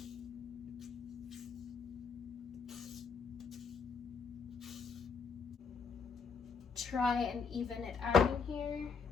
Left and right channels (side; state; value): right; quieter; 5.7 dB